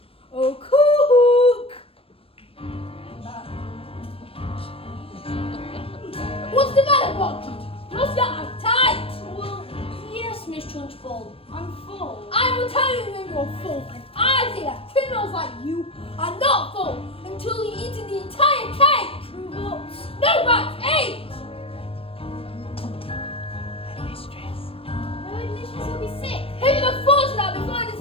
Oh, cook! What's the matter, Bog Trotter? What's your appetite? Well, yes, Miss Trunchbull, I'm full. I will tell you when you're full, and I say that criminals like you are not full until you eat the entire cake. But... No, but eat! Headmistress will be sick. Who would have thought of that before I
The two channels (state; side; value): late; right; 0.27 ms